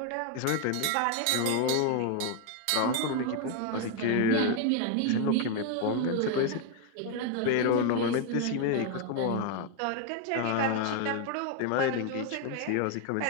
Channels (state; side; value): different; both; correlation 0.01